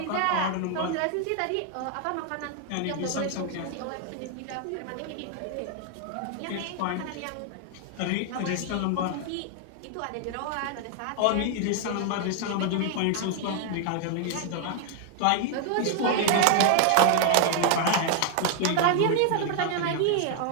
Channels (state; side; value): different; both; correlation 0.00